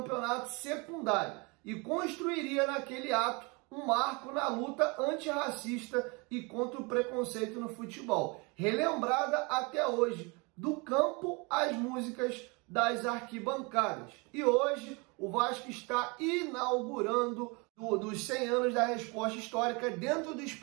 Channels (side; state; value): left; quieter; 29.2 dB